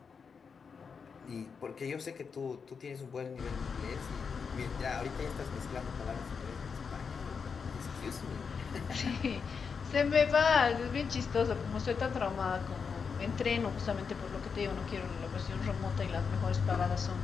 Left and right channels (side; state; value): right; quieter; 5.8 dB